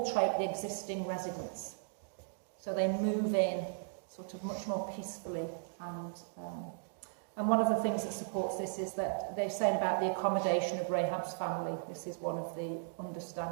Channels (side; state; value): left; silent; digital silence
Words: the existing residents. So they move in sort of much more peacefully. And one of the things that supports this is that they're saying about the accommodation of Rahab's family. This is one of the